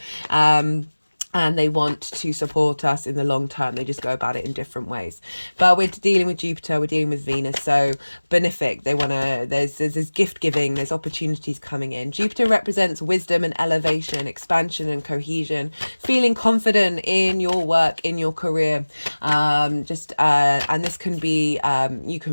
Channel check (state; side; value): inverted; both; correlation -1.00